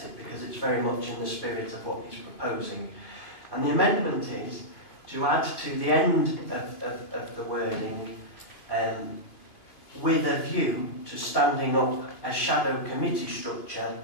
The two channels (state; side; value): late; right; 2.7 ms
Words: it because it's very much in the spirit of what he's proposing. And the amendment is to add to the end of the wording with a view to standing up a shadow committee